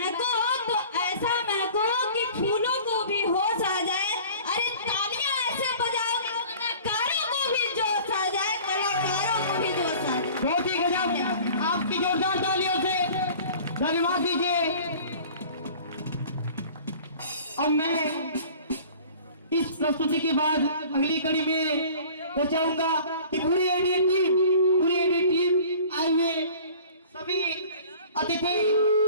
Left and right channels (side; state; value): both; inverted; correlation -0.46